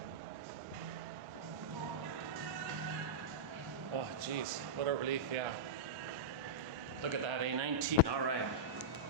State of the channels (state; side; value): normal; both; correlation -0.11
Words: Oh, geez, what a relief, yeah. Look at that, A19, all right.